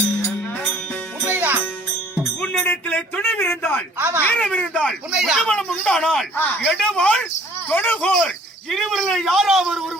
உண்மைதான். உன்னிடத்திலே துணிவிருந்தால் ஆமா. வீரமிருந்தால் உண்மைதான். உடம்பலம் உண்டானால் ஆ. எடுவாள் தொடுகோர் இருவரில் யாராவது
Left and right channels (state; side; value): normal; both; correlation 0.55